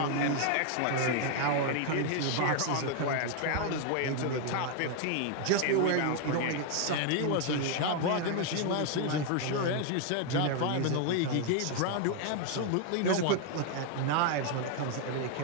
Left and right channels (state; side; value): different; both; correlation 0.00